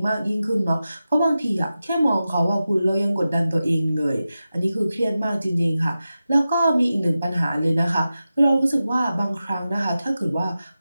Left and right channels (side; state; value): both; inverted; correlation -0.93